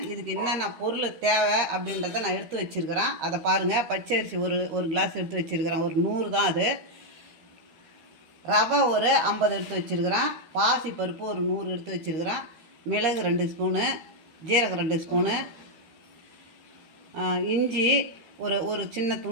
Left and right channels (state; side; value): late; left; 13 ms